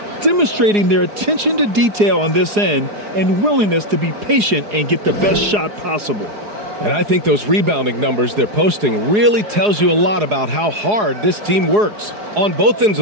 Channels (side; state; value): left; late; 4.8 ms